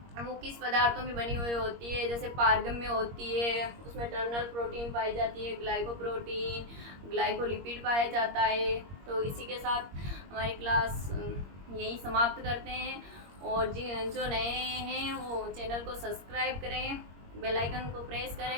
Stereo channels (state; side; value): late; left; 21 ms